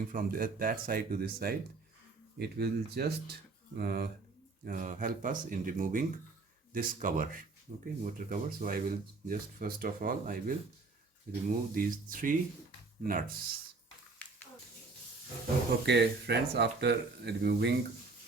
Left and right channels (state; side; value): quieter; left; 3.9 dB